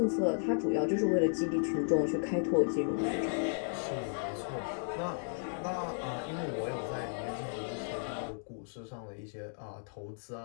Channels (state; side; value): silent; right; digital silence